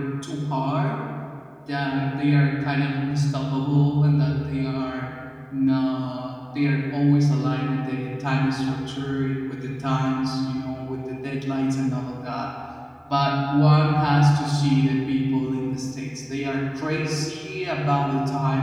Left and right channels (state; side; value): identical; both; correlation 1.00